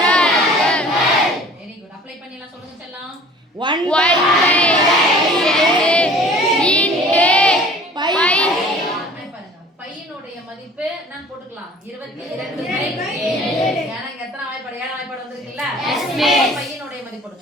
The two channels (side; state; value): both; normal; correlation 0.47